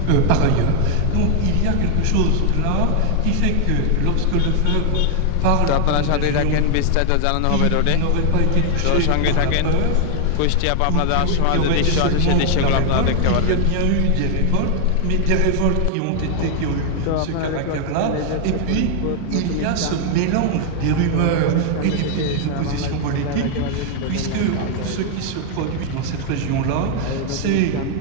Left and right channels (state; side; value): different; both; correlation 0.00